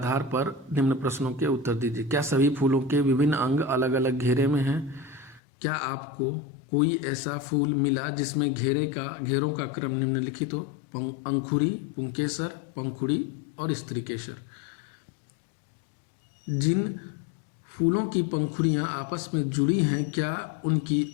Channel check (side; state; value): right; drops out; at 5.4 s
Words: पर निम्न प्रश्नों के उत्तर दीजिए। क्या सभी फूलों के विभिन्न अंग अलग अलग घेरे में हैं? क्या आपको कोई ऐसा फूल मिला जिसमें घेरों का क्रम निम्नलिखित हो? अंकुरी, पुंकेसर, पंखुड़ी और स्त्रीकेसर। जिन फूलों की पंखुड़ियाँ आपस में जुड़ी हैं, क्या उनकी